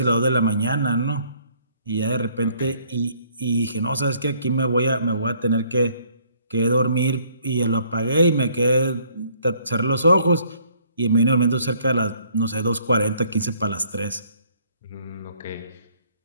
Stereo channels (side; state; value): both; inverted; correlation -0.63